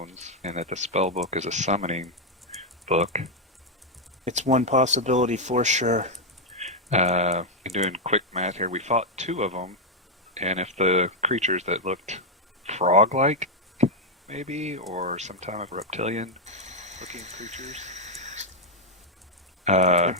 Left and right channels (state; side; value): normal; both; correlation 0.01